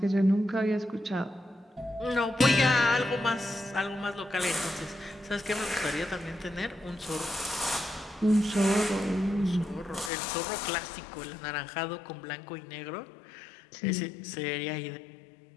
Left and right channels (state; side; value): drops out; right; at 10.1 s